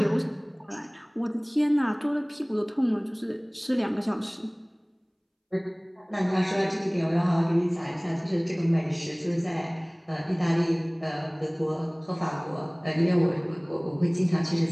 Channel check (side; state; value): both; identical; correlation 1.00